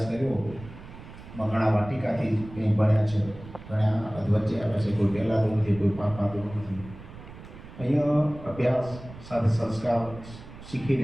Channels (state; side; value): noise; right; rumble, 16 dB below the sound